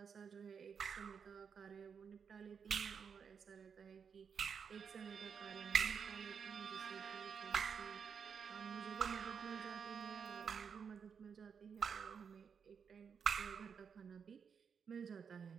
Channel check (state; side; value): quieter; left; 6.6 dB